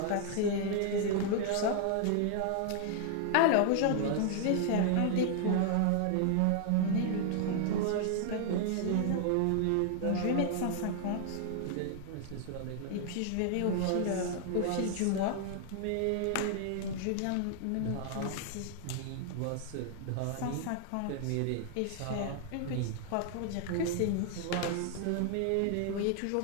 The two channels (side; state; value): both; different; correlation 0.00